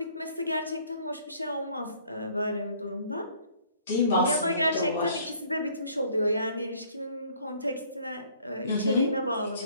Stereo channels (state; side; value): inverted; both; correlation -0.59